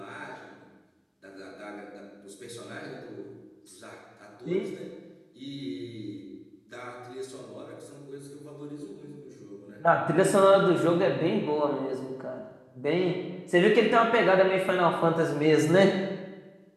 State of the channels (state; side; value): identical; both; correlation 1.00